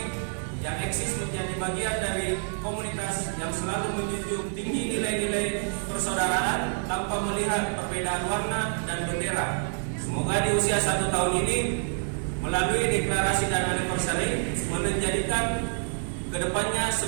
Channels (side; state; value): left; silent; 60 dB below the other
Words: yang eksis menjadi bagian dari komunitas yang selalu menjunjung tinggi nilai-nilai persaudaraan tanpa melihat perbedaan warna dan bendera. Semoga di usia 1 tahun ini melalui deklarasi dan anniversary menjadikan kedepannya